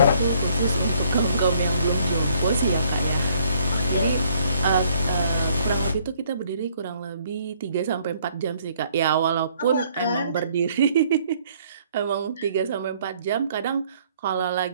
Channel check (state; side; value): inverted; both; correlation -0.64